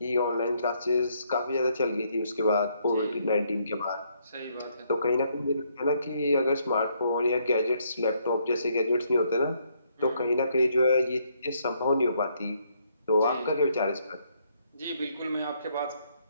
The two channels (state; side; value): inverted; both; correlation -0.71